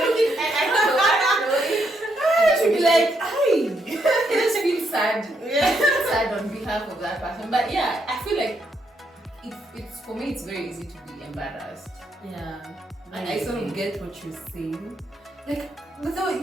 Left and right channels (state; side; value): normal; both; correlation 0.77